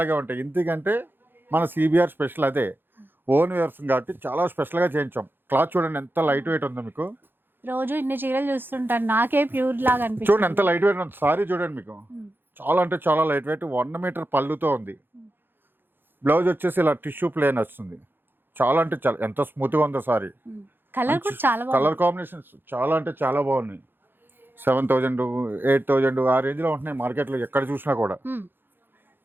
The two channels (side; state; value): left; late; 0.099 ms